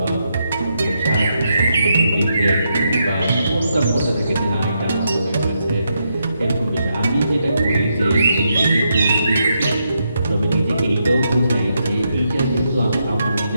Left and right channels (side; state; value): both; inverted; correlation -0.81